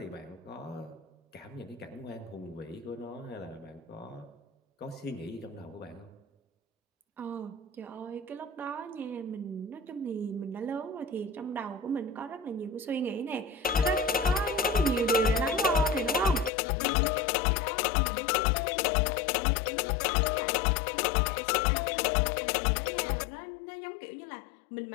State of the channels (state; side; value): drops out; right; at 16.5 s